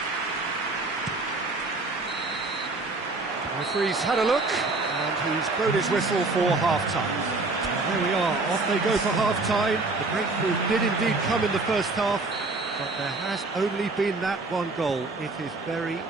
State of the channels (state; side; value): quieter; left; 3.4 dB